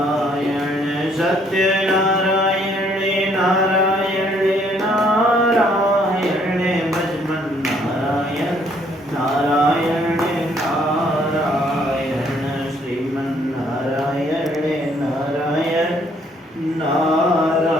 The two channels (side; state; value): both; normal; correlation 0.65